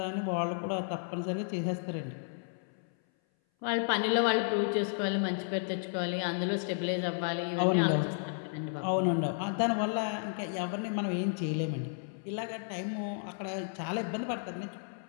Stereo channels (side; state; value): right; silent; 56 dB below the other